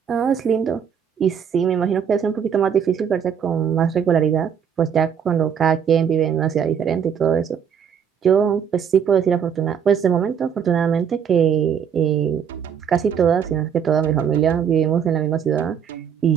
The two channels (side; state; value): left; quieter; 7.7 dB